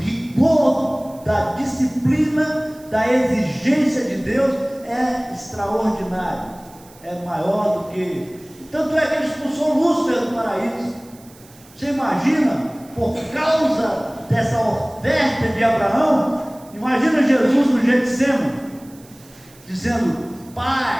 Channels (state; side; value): noise; right; hiss, 25 dB below the sound